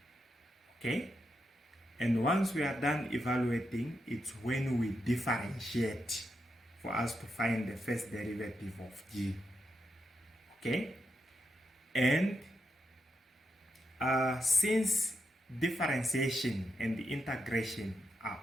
Okay, and once we are done evaluating, it's when we differentiate for us to find the first derivative of g. Okay, and since differentiation and the integration are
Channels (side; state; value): both; normal; correlation 0.84